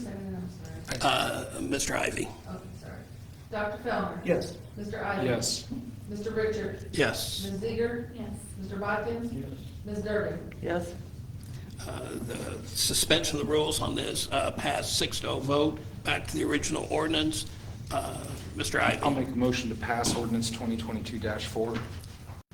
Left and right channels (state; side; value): identical; both; correlation 1.00